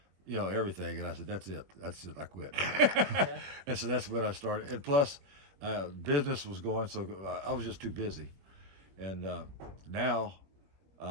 you know, everything. And I said, that's it. I quit. And so that's when I started. And plus, business was going, so I was just too busy. And now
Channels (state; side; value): late; left; 21 ms